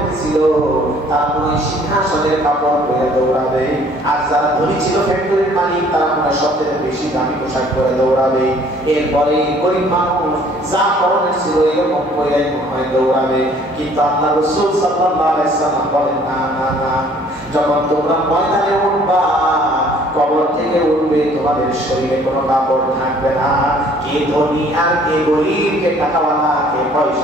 তারা মনে সিংহাসনের কাপড় পরে দৌড়াবে, আর যারা ধনী ছিল ফ্যাক্টরির মালিক তারা মনে সবচেয়ে বেশি দামি পোশাক পরে দৌড়াবে। এরপরে গরিব মানুষ যা পরনের ছিল এরকম পরে মনে দৌড়াবে। কিন্তু আল্লাহ রাসূল সাল্লাল্লাহু আলাইহি সাল্লাম বলেন না না না, যখন তোমরা ময়দানে উঠবা কবর থেকে উঠবে তোমাদের শরীরে কোনো কাপড় থাকবে না। কে ধনী আর কে গরিব, কে টাকাওয়ালা, কে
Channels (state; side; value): normal; both; correlation 0.57